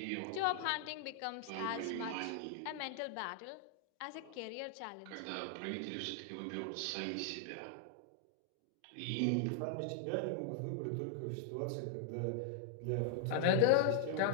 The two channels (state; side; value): different; both; correlation 0.00